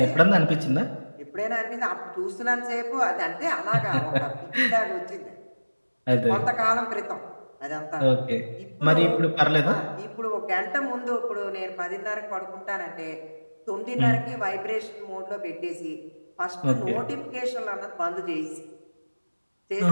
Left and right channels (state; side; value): inverted; both; correlation -1.00